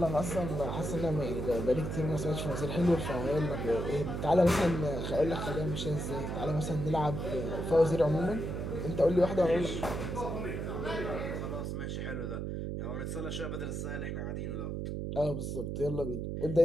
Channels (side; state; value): right; noise; hum, 3 dB below the sound